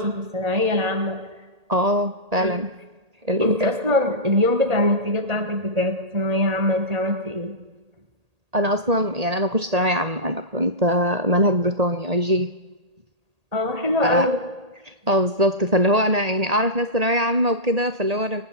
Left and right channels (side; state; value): left; late; 1.8 ms